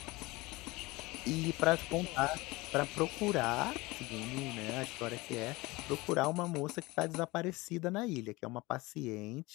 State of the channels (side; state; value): right; quieter; 22.1 dB